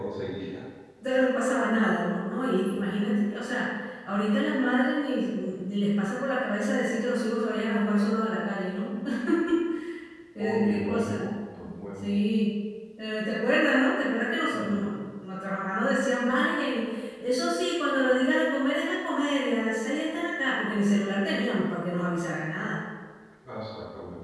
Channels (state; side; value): identical; both; correlation 1.00